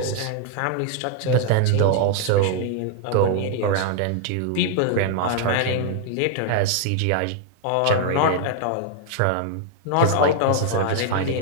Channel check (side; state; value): both; different; correlation -0.01